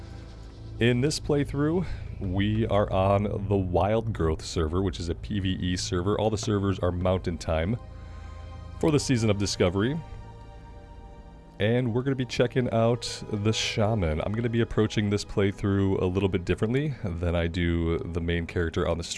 In this playthrough, we are on the Wild Growth server, which is a PvE server. All the servers are Mountain Time for the Season of Discovery. And we're going to be checking out the Shaman. I'm going to be approaching this playthrough a little bit differently than I do the main character on the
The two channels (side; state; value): both; identical; correlation 1.00